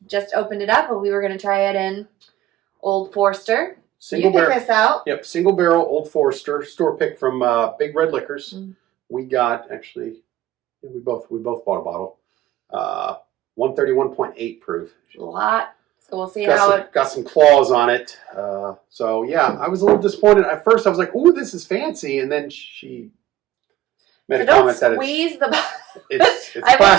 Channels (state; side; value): quieter; left; 14.2 dB